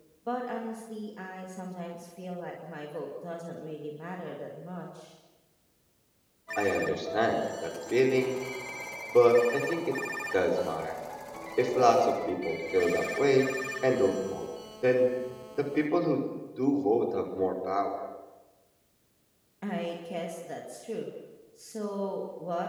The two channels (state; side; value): identical; both; correlation 1.00